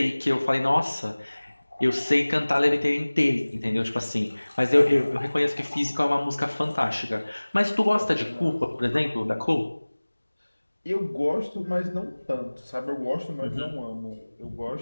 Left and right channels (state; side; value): inverted; both; correlation -1.00